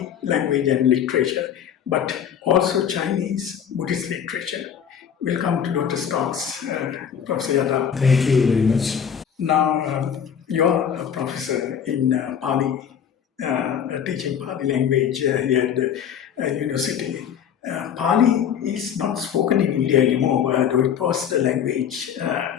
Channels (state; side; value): quieter; right; 8.3 dB